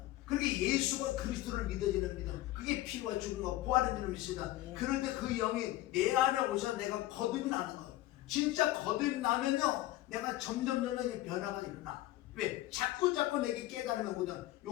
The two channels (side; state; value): right; quieter; 16.0 dB